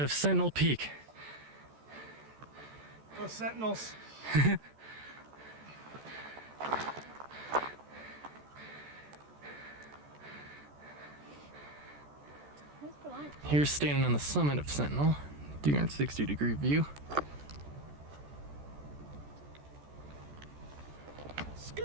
of Sentinel Peak. Go Sentinels. Where's for lunch? Here's standing on the summit of Sentinel, 360-degree view.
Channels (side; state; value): left; late; 14 ms